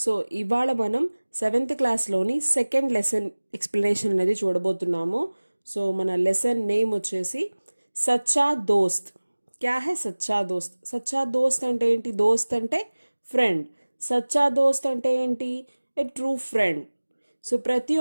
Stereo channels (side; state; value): both; inverted; correlation -1.00